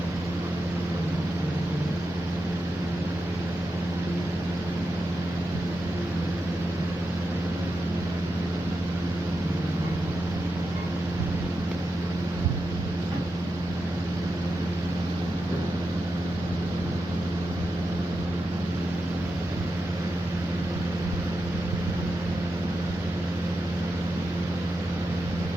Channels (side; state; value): both; normal; correlation 0.88